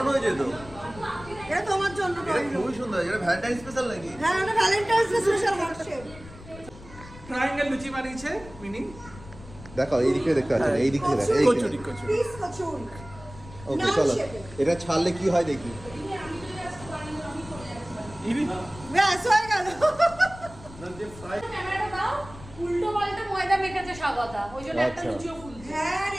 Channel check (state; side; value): noise; left; rumble, 17 dB below the sound